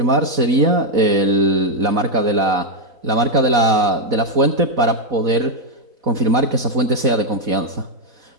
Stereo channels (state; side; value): late; left; 4.0 ms